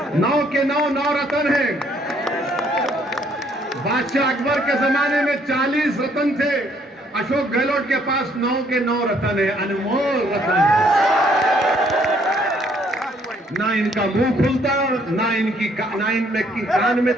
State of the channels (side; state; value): both; normal; correlation 0.66